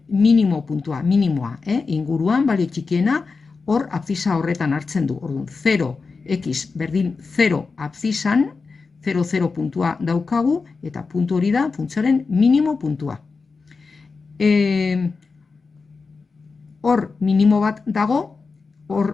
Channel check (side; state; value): right; quieter; 4.5 dB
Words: minimo puntua, minimoa, inguruan balio txikiena, hor abzisa horretan hartzen du. Orduan, 0, x berdin 0 abzisan, 0, 0 puntua daukagu, eta puntu hori da funtzioaren minimo puntua. Hor minimo bat dago,